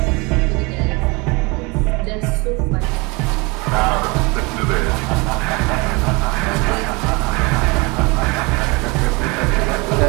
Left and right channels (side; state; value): left; quieter; 27.4 dB